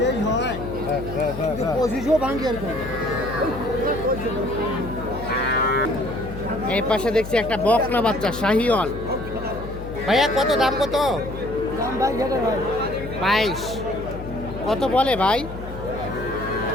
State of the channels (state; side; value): noise; left; hum, 10 dB below the sound